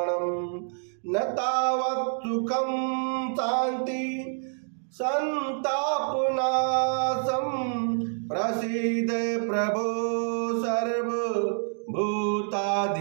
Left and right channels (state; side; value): silent; left; digital silence